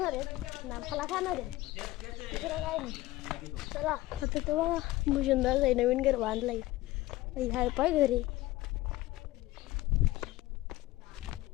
आहेत ना फळा खाणार आहे दुसरं काय नाही चला आता तर बघा भूषणदास आहे नवीन घर बांधलाय हाय पाय घरी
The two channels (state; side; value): quieter; right; 17.6 dB